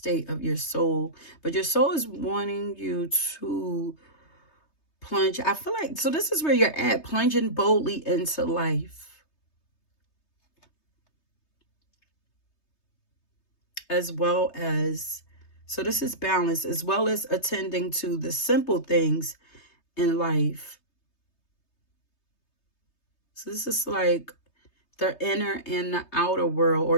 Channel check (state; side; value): late; right; 3.3 ms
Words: of your soul, but your soul is wanting you to plunge. I feel like, so this is where you're at, plunging boldly into life. As well as, so this is balance, as well as attending to the simple things in life. So this is like the inner and the outer world, or